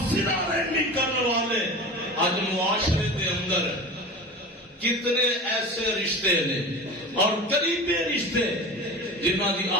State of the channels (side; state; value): both; normal; correlation 0.32